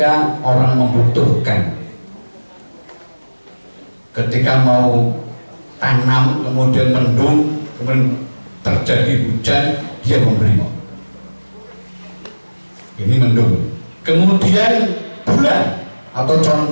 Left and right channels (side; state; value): both; inverted; correlation -1.00